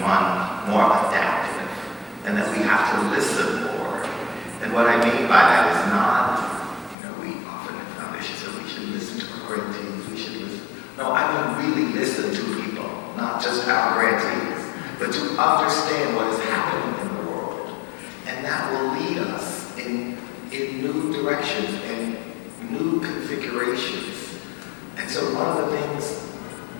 more adaptive, and that we have to listen more. And what I mean by that is not, we often in foundation say we should listen to our grantees, we should listen. No, I mean really listen to people, not just our grantees. but to understand what is happening in the world. And that will lead us in new directions and new configurations. And so one of the things,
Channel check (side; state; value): right; drops out; at 7.0 s